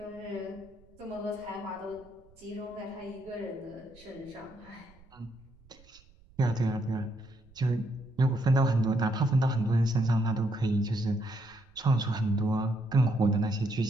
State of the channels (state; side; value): noise; right; rumble, 27 dB below the sound